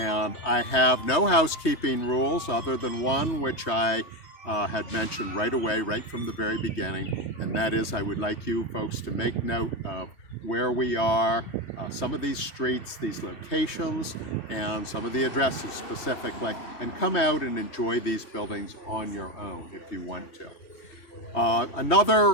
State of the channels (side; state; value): right; late; 3.2 ms